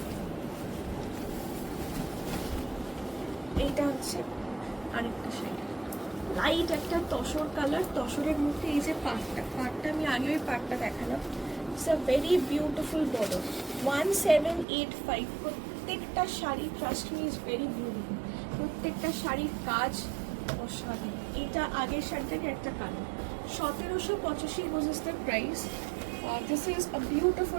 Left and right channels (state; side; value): drops out; left; at 14.7 s